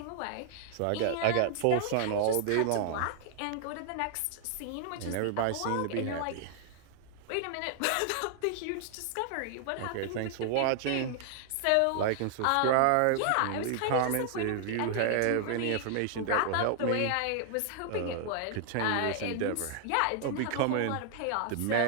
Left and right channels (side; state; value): both; different; correlation -0.01